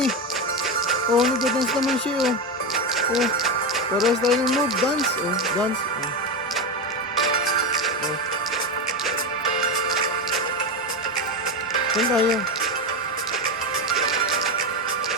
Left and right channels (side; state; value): both; normal; correlation 0.15